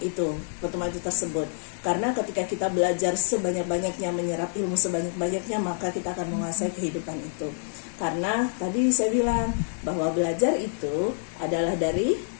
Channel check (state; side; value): silent; right; digital silence